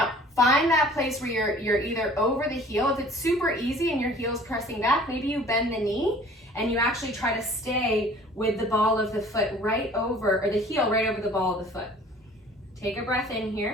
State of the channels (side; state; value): both; normal; correlation 0.50